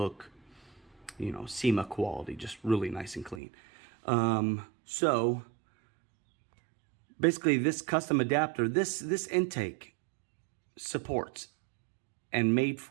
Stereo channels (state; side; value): drops out; left; at 3.4 s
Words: you know, SEMA quality, just really nice and clean. So basically this custom adapter, this intake supports and made